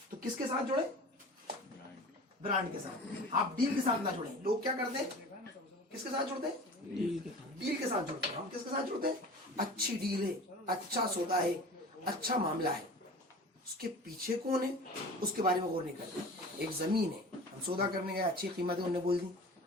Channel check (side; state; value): both; normal; correlation 0.38